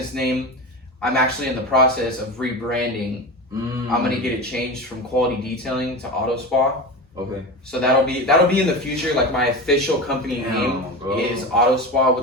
name. I'm actually in the process of rebranding. I'm gonna get it changed from Quality Detailing to Auto Spa. Okay. So that'll be in the future. Like my official company name is Auto Spa,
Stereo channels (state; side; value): normal; both; correlation 0.25